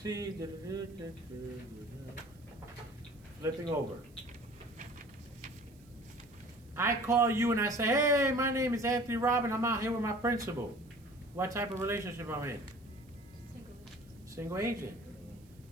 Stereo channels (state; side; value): noise; right; hiss, 30 dB below the sound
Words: Flipping over. I call you and I say, hey, my name is Anthony Robin. I'm out here with my principal. What type of relationship I'm in? Single agent.